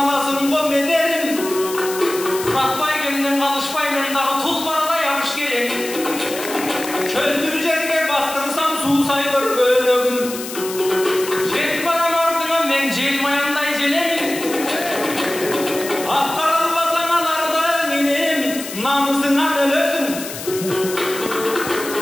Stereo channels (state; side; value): noise; left; hiss, 10 dB below the sound